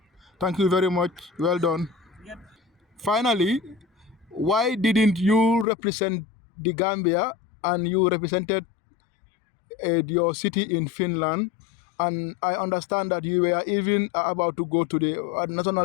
Thank you very much. Well done. Yep. Finally, why didn't you represent the Gambia and you represented your city in Finland? And I understand that you were even about to go to the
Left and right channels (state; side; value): drops out; right; at 5.7 s